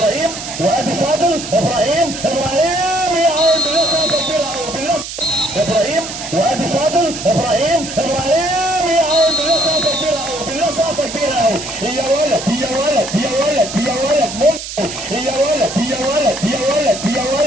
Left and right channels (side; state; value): right; noise; hiss, 9 dB below the sound